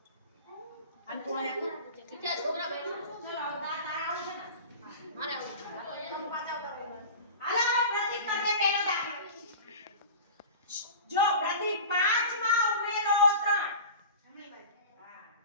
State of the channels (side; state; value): both; inverted; correlation -0.35